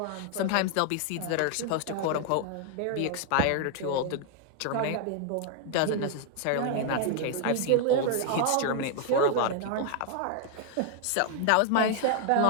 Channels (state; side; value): different; both; correlation 0.00